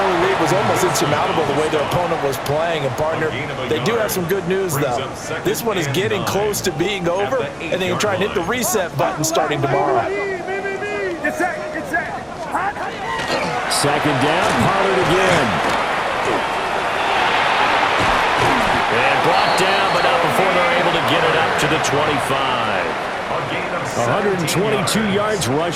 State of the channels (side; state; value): both; identical; correlation 1.00